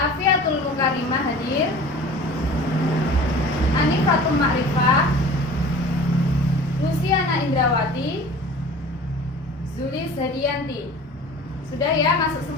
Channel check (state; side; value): normal; both; correlation 0.42